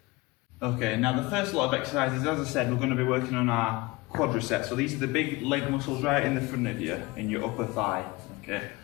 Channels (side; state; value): right; quieter; 22.8 dB